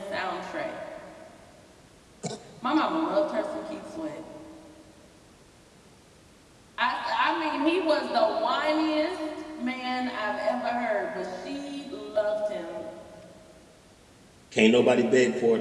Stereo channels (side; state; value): both; identical; correlation 1.00